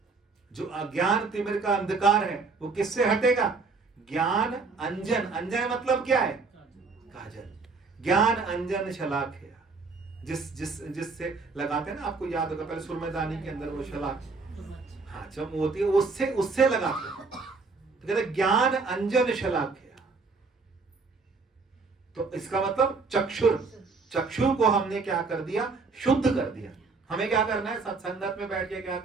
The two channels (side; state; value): left; quieter; 4.2 dB